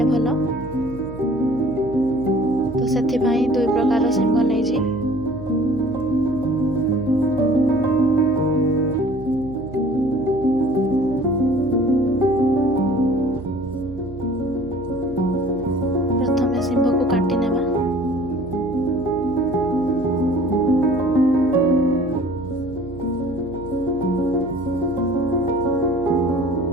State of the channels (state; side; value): noise; right; hum, 15 dB below the sound